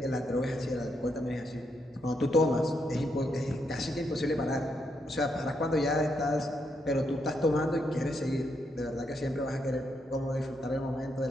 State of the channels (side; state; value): both; normal; correlation 0.79